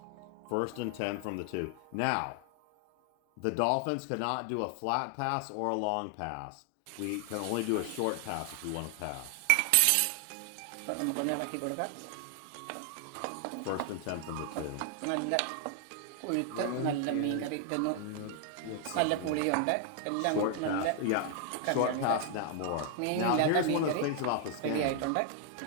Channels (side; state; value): both; different; correlation 0.00